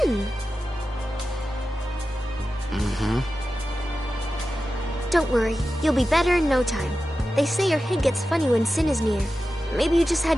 Don't worry, you'll be better in no time. They say your head gets funny when Sin is near. Maybe you just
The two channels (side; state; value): both; normal; correlation 0.93